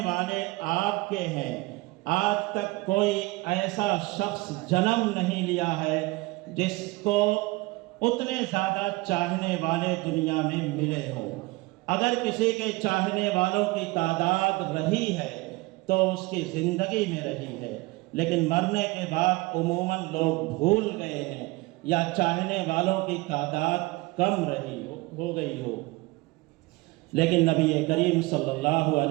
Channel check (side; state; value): left; quieter; 22.6 dB